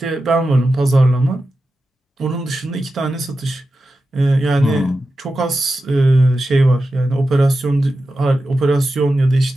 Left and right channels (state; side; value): normal; both; correlation 0.92